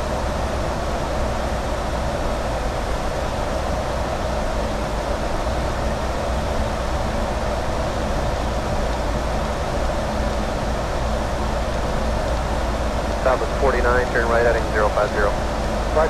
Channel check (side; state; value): both; identical; correlation 1.00